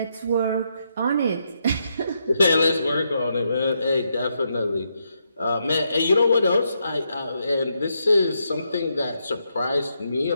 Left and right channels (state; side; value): inverted; both; correlation -0.80